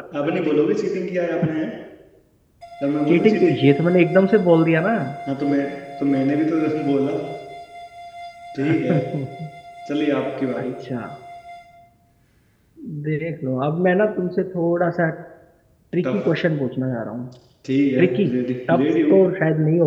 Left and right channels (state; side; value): identical; both; correlation 1.00